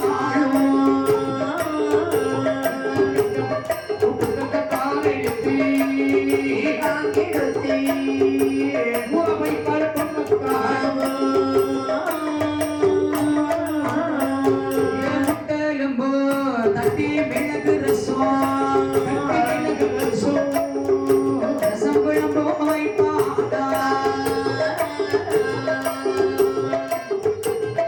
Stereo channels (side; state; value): both; identical; correlation 1.00